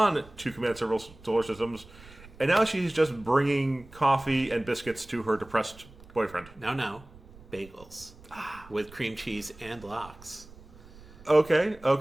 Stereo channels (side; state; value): right; noise; rumble, 21 dB below the sound